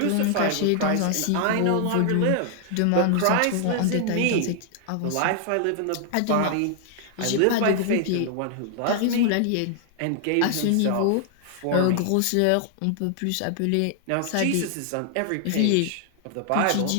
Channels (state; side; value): different; both; correlation 0.00